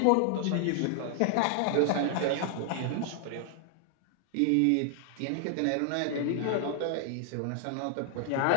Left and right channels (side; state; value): both; different; correlation 0.00